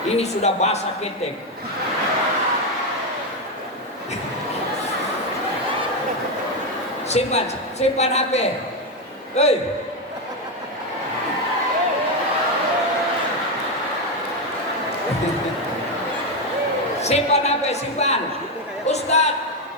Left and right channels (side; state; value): both; normal; correlation 0.08